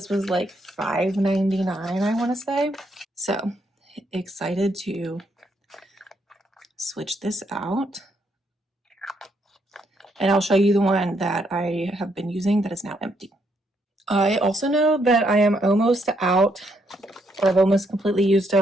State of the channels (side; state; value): both; normal; correlation 0.75